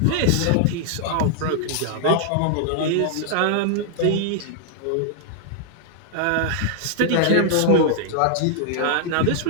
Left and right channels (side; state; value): both; different; correlation -0.01